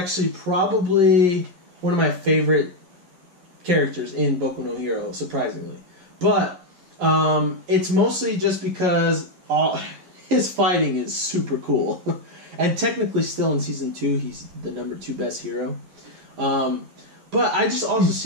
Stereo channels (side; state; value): left; late; 11 ms